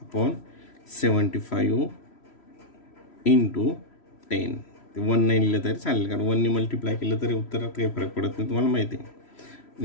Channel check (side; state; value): right; late; 3.1 ms